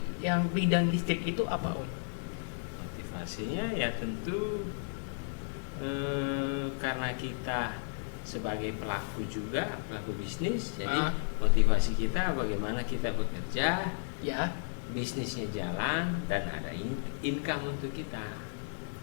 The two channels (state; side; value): silent; right; digital silence